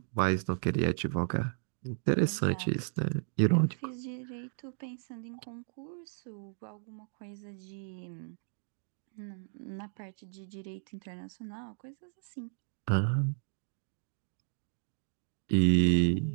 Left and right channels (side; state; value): left; silent; digital silence